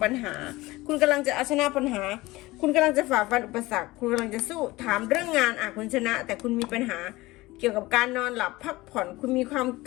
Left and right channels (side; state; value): right; quieter; 19.9 dB